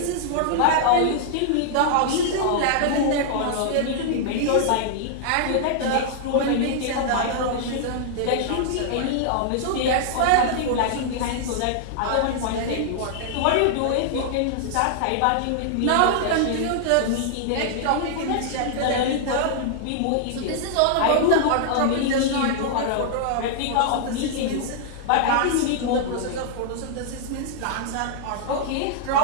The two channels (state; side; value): different; both; correlation -0.01